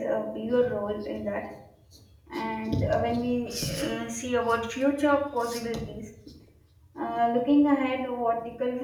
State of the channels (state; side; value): identical; both; correlation 1.00